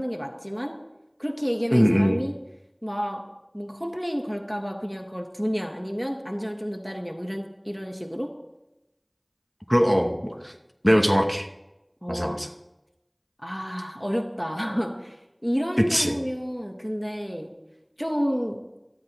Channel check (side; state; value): both; identical; correlation 1.00